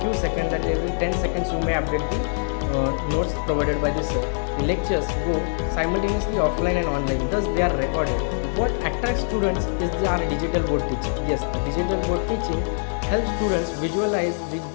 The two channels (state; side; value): silent; right; digital silence